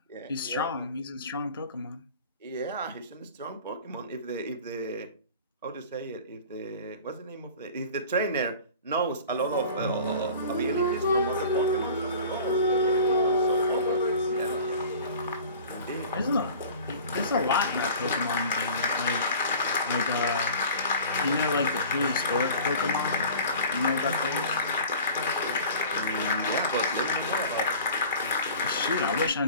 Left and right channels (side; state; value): both; inverted; correlation -0.43